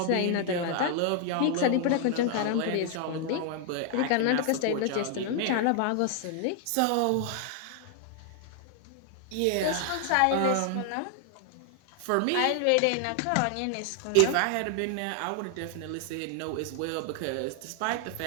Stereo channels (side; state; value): both; different; correlation 0.00